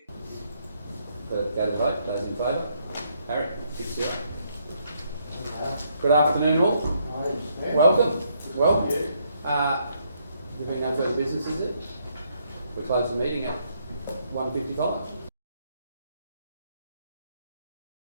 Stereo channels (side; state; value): both; inverted; correlation -0.73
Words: Go to vote. Those in favour? Harry, 6-0. Good afternoon all. Welcome. Well, there being no further business, is it? We close the meeting at 1:55.